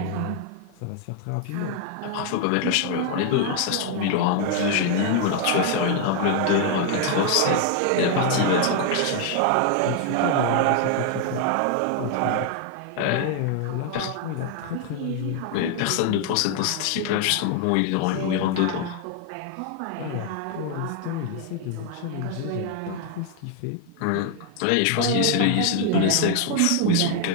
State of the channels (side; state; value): both; different; correlation 0.00